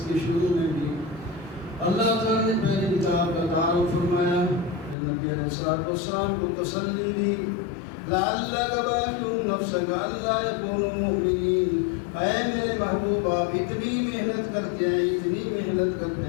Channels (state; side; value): drops out; right; at 5.0 s